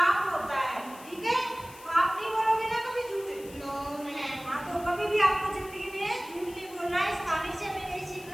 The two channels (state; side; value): noise; left; hiss, 19 dB below the sound